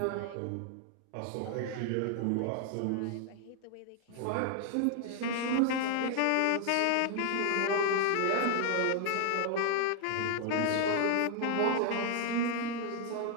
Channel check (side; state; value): both; different; correlation 0.00